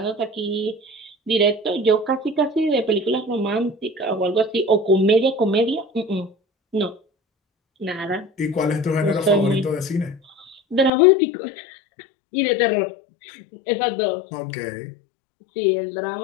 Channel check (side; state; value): right; drops out; at 10.9 s